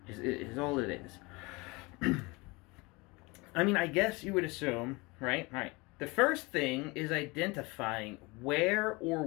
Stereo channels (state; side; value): quieter; right; 25.3 dB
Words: Is all it is. I mean, I guess you would assume, right? The first thing is identifying where or